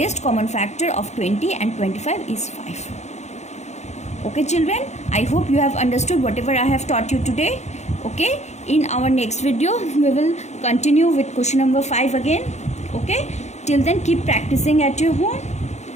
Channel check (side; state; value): right; late; 0.33 ms